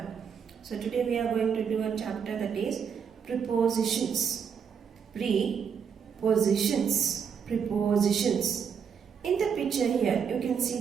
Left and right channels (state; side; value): quieter; left; 7.0 dB